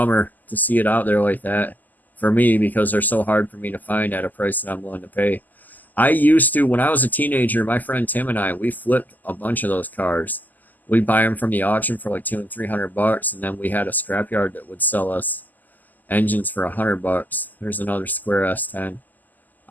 to see it out there like that for me, because they're so hard for me to find at a price that I'm willing to pay. I used to, when I was a teenager, my friend Tim and I, we flipped a bunch of those cars. We'd buy them from the auction for like $200 and $300, and then we had a scrapyard that would sell us engines for $100. There's another square S10.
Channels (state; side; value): late; right; 0.084 ms